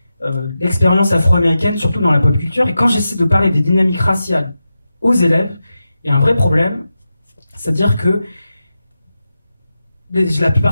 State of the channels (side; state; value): both; inverted; correlation -0.91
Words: l'expérience afro-américaine, surtout dans la pop culture. Et quand j'essaie de parler des dynamiques raciales aux élèves, il y a un vrai problème, c'est-à-dire que la